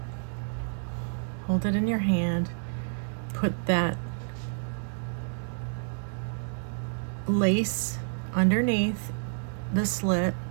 hold it in your hand, put that lace underneath the slit,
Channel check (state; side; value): silent; left; digital silence